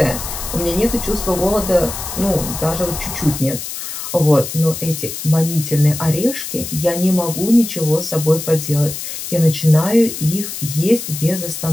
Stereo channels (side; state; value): left; noise; hiss, 7 dB below the sound